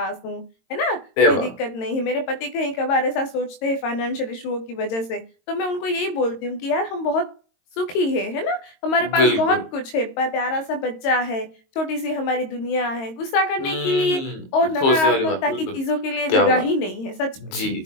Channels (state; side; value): late; right; 22 ms